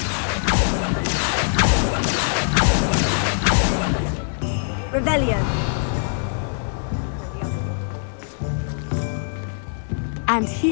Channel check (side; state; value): right; silent; digital silence